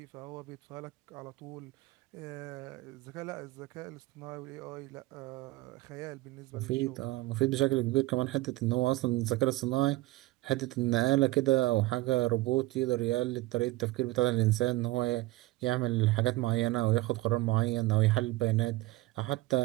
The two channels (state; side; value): quieter; left; 18.8 dB